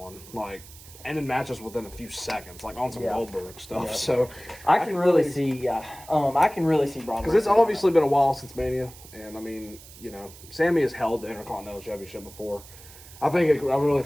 like ending matches within a few seconds, like on some Yeah. Goldberg stuff. Yeah. So I can really see, I can really see Braun. because it's obviously been a while since Mania, and I mean, Sammy has held the Intercontinental Championship before. I really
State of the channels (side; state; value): right; noise; hiss, 19 dB below the sound